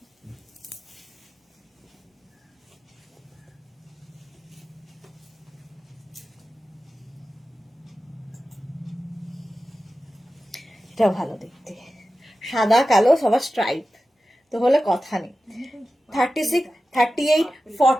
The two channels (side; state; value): both; normal; correlation 0.94